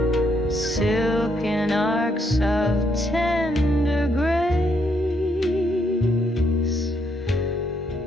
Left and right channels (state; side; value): normal; both; correlation 0.74